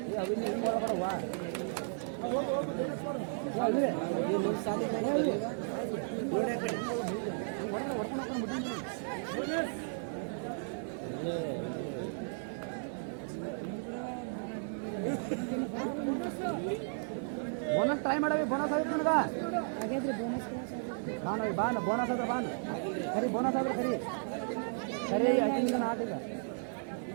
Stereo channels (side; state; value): left; silent; digital silence